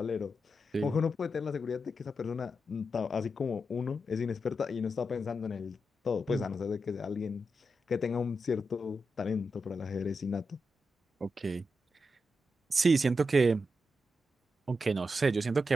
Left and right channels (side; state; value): both; normal; correlation 0.87